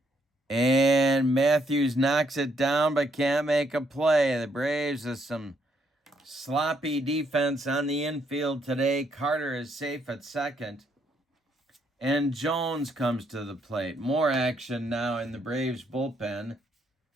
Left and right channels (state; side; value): normal; both; correlation 0.73